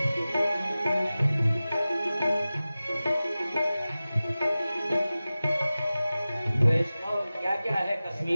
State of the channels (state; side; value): inverted; both; correlation -0.96